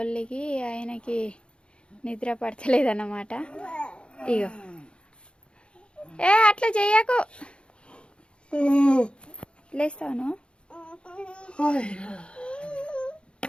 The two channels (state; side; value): late; right; 0.056 ms